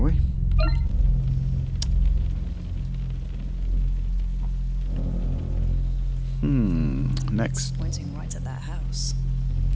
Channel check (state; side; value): identical; both; correlation 1.00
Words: we? Next. Pointing right at that house.